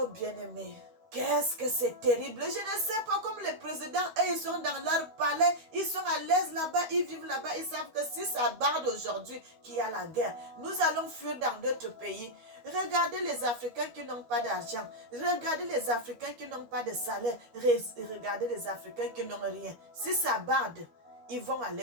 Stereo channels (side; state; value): left; late; 13 ms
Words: bien-aimé, qu'est-ce que c'est terrible. Je ne sais pas, comme les présidents, eux, ils sont dans leur palais, ils sont à l'aise là-bas, ils vivent là-bas, ils savent que si ça barde aujourd'hui qu'il y a la guerre, nous allons fuir dans d'autres pays. Regardez les Africains qui n'ont pas d'argent. Regardez les Africains qui n'ont pas de salaire. Regardez les Africains qui n'ont rien. Si ça barde, ils vont aller